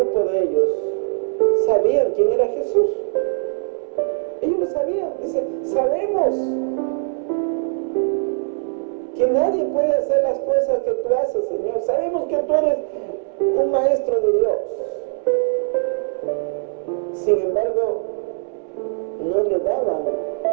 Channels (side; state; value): left; silent; digital silence